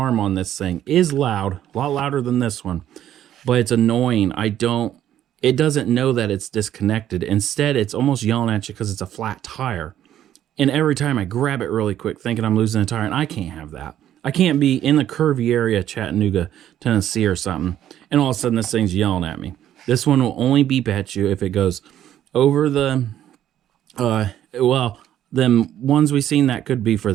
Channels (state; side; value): quieter; left; 11.4 dB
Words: on this thing is loud, a lot louder than this one. But it's annoying. It doesn't know that it's disconnected. Instead, it's almost yelling at you because it's a flat tire. And every time I grab it really quick, thinking I'm losing a tire, and I can't have that. I can't be in the curvy area, Chattanooga, Tennessee or something, and all of a sudden this thing's yelling at me. This one will only beep at you if it goes over the, well, them ones we've seen, that could be for